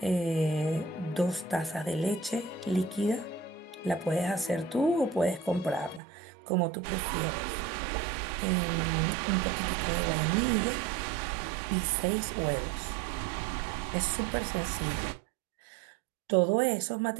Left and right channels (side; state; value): left; drops out; at 6.0 s